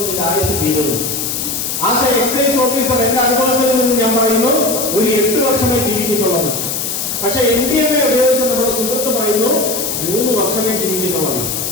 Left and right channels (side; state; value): left; noise; hiss, 3 dB below the sound